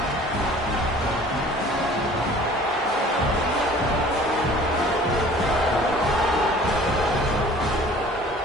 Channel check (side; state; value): both; normal; correlation 0.48